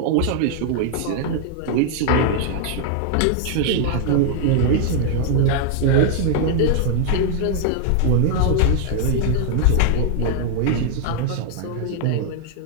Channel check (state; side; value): different; both; correlation -0.01